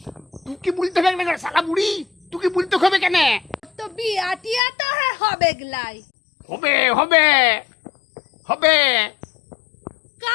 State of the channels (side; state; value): right; drops out; at 4.6 s